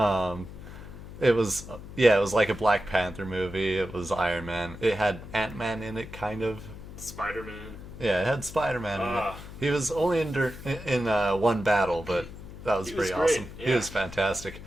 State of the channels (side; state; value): left; noise; hum, 13 dB below the sound